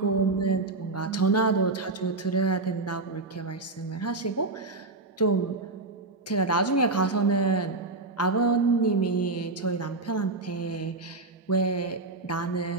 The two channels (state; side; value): quieter; left; 3.4 dB